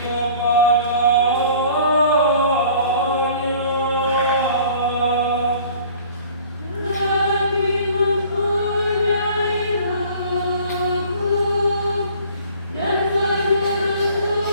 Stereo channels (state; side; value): inverted; both; correlation -0.50